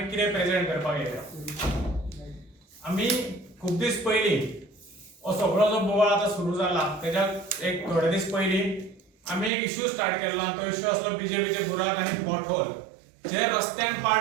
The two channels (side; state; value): left; drops out; at 9.5 s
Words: कितें प्रेजेंट करपाक येयल्या. आमी खूब दीस पयलीं हो सगळो जो बोवाळ आतां सुरू जाला तेच्या एक थोडे दीस पयलीं आमी एक इश्यू स्टार्ट केल्लो आनी तो इश्यू आसलो बीजेपीचे बुराक आनी पॉटहोल. जे रस्त्यान